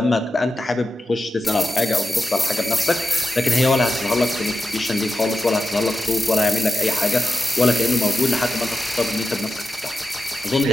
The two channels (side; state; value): both; normal; correlation 0.90